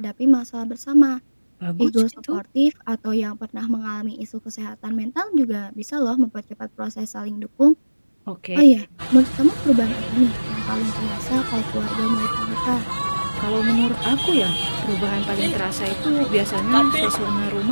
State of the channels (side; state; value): both; inverted; correlation -1.00